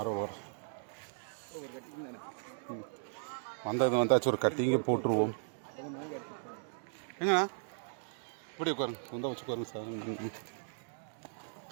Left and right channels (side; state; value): left; silent; digital silence